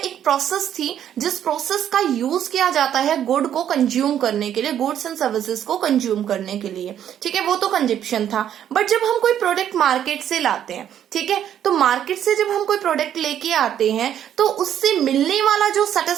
प्रोसेस थी जिस प्रोसेस का यूज किया जाता है गुड को कंज्यूम करने के लिए, गुड्स एंड सर्विसेज को कंज्यूम करने के लिए। ठीक है, वो तो कंजप्शन था। बट जब हम कोई प्रोडक्ट मार्केट से लाते हैं, ठीक है, तो मार्केट से जब हम कोई प्रोडक्ट लेके आते हैं तो उससे मिलने वाला जो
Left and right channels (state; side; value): quieter; left; 10.1 dB